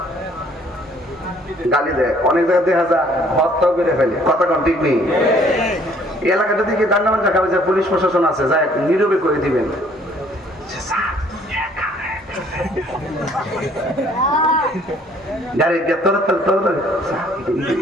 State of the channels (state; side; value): normal; both; correlation 0.60